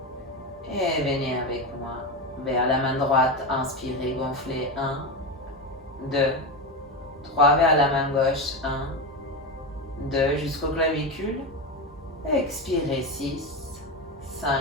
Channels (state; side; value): normal; both; correlation 0.16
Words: Et venez avec moi vers la main droite, inspirez, gonflez 1, 2, 3 vers la main gauche, 1, 2 jusqu'au clavicule. Expirez 6, 5,